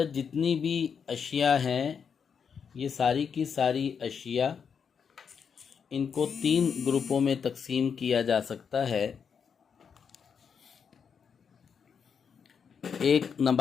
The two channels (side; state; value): right; quieter; 6.7 dB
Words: جتنی بھی اشیاء ہیں، یہ ساری کی ساری اشیاء، ان کو 3 گروپوں میں تقسیم کیا جا سکتا ہے۔ ایک